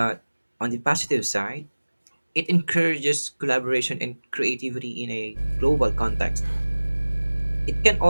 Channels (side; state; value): both; inverted; correlation -1.00